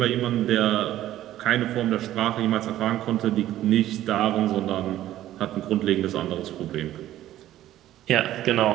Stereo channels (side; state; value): left; quieter; 13.4 dB